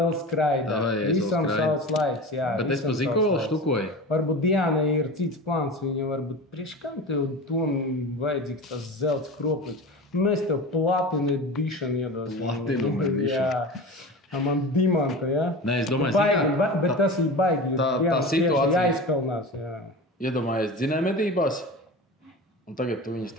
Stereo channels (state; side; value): normal; both; correlation 0.31